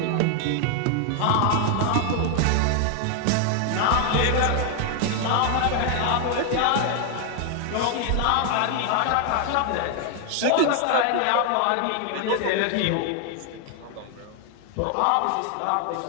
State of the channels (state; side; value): different; both; correlation 0.00